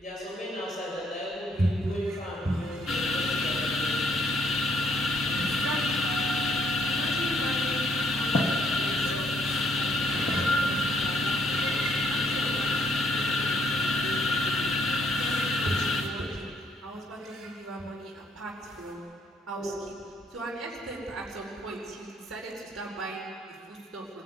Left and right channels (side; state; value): both; normal; correlation 0.68